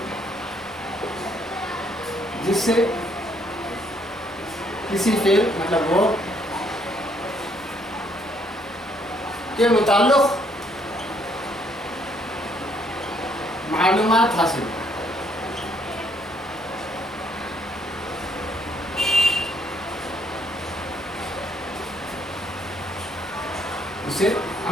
जिससे किसी फेल मतलब वो के मुताल्लिक़ मालूमात हासिल, उसे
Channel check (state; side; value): normal; both; correlation 0.68